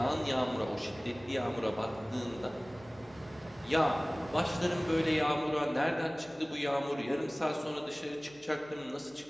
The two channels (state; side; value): noise; left; hum, 28 dB below the sound